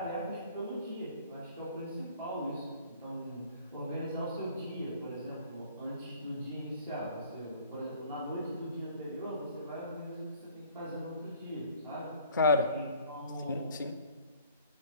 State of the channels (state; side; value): inverted; both; correlation -0.54